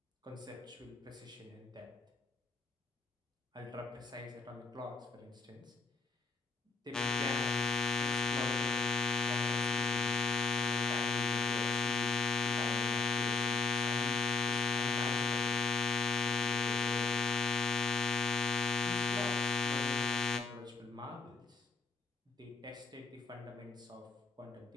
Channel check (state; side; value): quieter; right; 4.0 dB